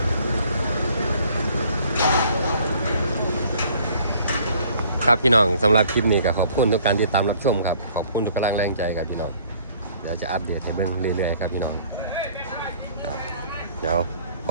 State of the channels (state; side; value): inverted; both; correlation -0.57